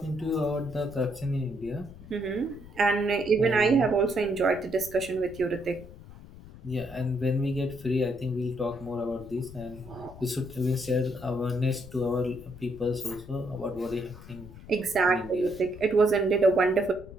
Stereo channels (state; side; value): noise; left; rumble, 17 dB below the sound